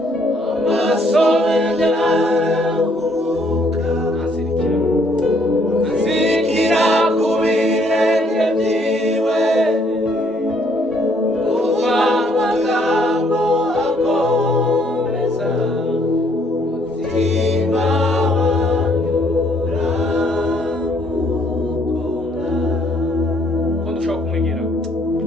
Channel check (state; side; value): normal; both; correlation 0.67